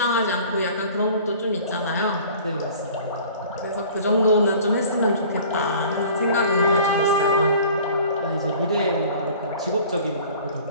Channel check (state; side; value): inverted; both; correlation -0.47